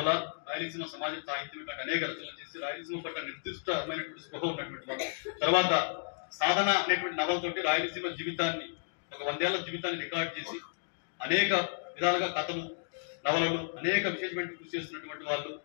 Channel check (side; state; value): right; silent; digital silence